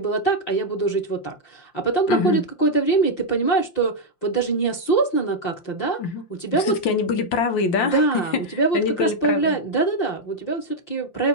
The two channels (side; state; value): right; late; 5.7 ms